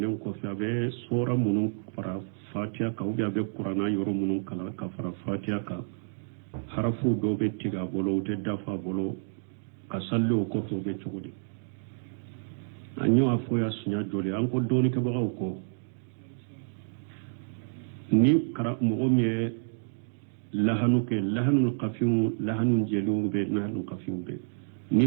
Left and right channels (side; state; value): left; silent; digital silence